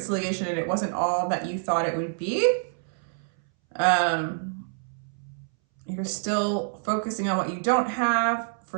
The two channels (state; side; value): silent; left; 60 dB below the other